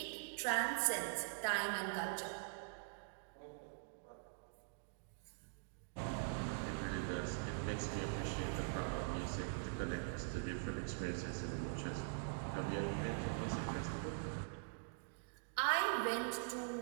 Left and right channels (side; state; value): left; silent; digital silence